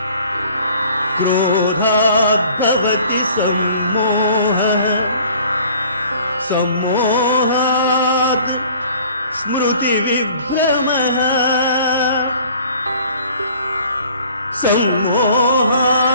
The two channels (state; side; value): inverted; both; correlation -0.52